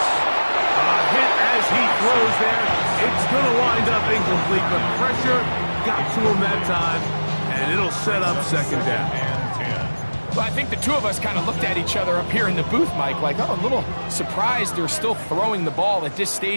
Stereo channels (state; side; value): inverted; both; correlation -1.00